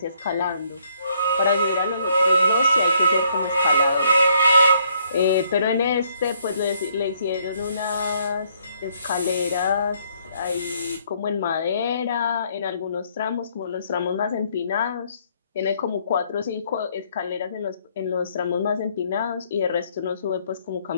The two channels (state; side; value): inverted; both; correlation -0.68